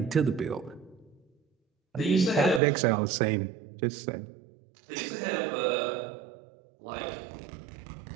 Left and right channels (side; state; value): left; drops out; at 2.6 s